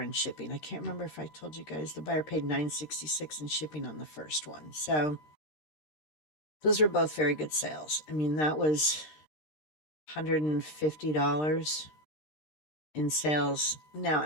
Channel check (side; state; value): right; late; 13 ms